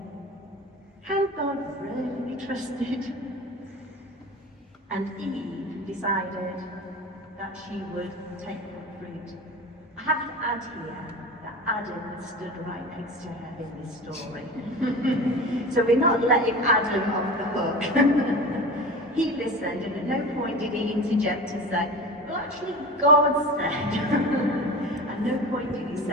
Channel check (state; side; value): normal; both; correlation 0.32